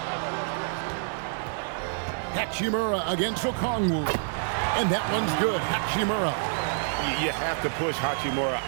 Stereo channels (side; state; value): left; silent; digital silence